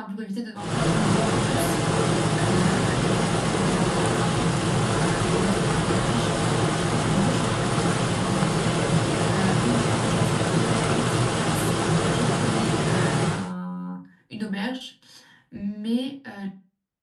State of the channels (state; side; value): identical; both; correlation 1.00